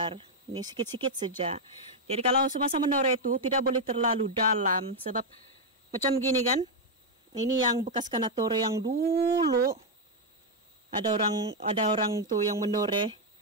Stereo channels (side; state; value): both; normal; correlation 0.01